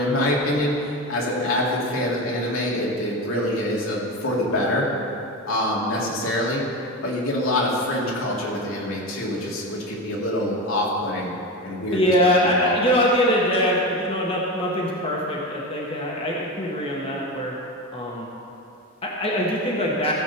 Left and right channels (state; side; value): normal; both; correlation 0.22